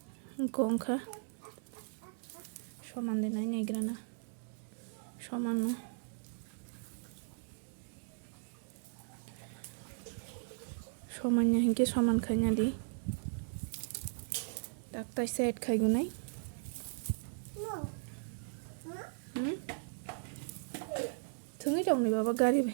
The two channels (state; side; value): silent; left; digital silence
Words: Gongkha soman denai naigrana soman no somannya hingke soman khanya di tak taisa add khai gunai thungi dong ni baba gari